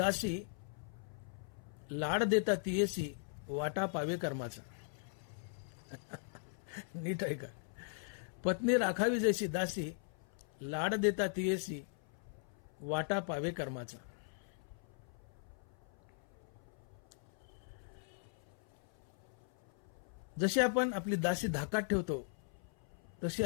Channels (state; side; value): silent; right; 52 dB below the other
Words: लाड देता तियेसी, वाटा पावे कर्माचा. नीट आहे का? पत्नी राखावी जैसी दासी, लाड देता तियेसी, वाटा पावे कर्माचा. जशी आपण आपली दासी धाकात ठेवतो, तशी